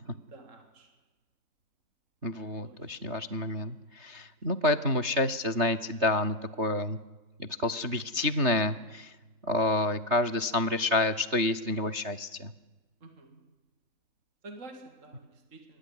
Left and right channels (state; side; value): late; left; 3.3 ms